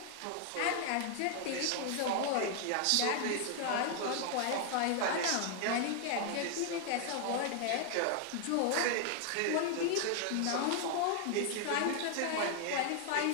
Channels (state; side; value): different; both; correlation 0.00